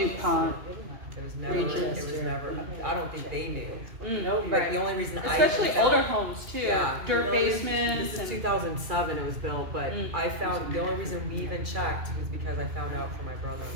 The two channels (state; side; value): late; left; 2.4 ms